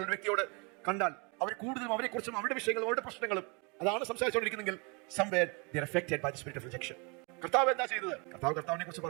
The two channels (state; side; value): quieter; left; 31.4 dB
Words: വ്യക്തിയോട് കണ്ടാൽ അവർ കൂടുതലും അവരെ കുറിച്ചും അവരുടെ വിഷയങ്ങളും അവരുടെ പ്രശ്നങ്ങളും അതാണ് സംസാരിച്ചുകൊണ്ടിരിക്കുന്നെങ്കിൽ somewhere they are affected by the spirit of rejection. കർത്താവ് എന്താ ചെയ്തത്? കർത്താവിനെ കുറിച്ച്